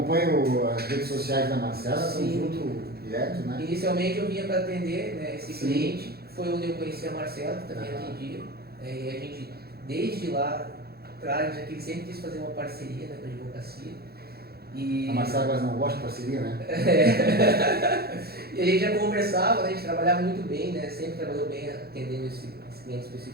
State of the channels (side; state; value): left; late; 0.46 ms